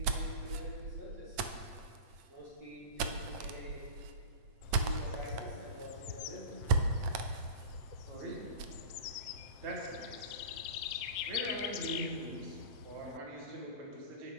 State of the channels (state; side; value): late; left; 8.9 ms